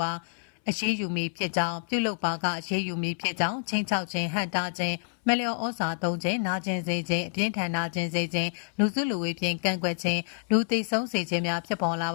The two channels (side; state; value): right; silent; 59 dB below the other